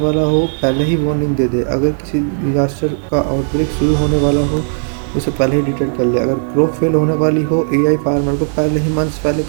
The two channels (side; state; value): left; silent; 57 dB below the other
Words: हो पहले ही वार्निंग दे दे। अगर किसी डिजास्टर का आउटब्रेक शुरू होने वाला हो उसे पहले ही डिटेक्ट कर ले। अगर क्रॉप फेल होने वाली हो, एआई फार्मर को पहले ही मंथ्स पहले